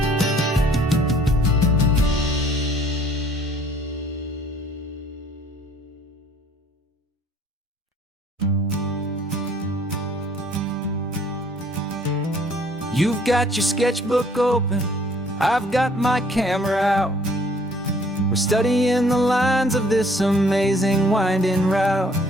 You've got your sketchbook open, I've got my camera out. We're studying the lines of this amazing winding route.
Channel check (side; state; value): both; normal; correlation 0.58